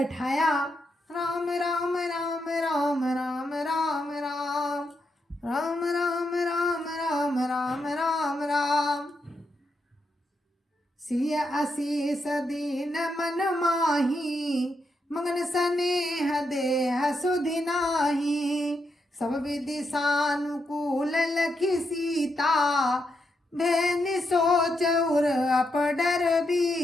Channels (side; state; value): both; normal; correlation 0.82